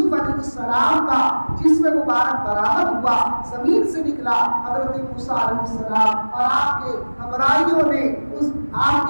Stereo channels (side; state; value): both; inverted; correlation -1.00